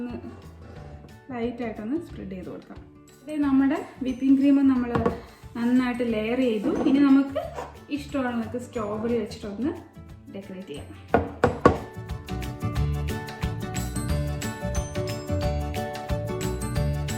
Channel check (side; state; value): both; identical; correlation 1.00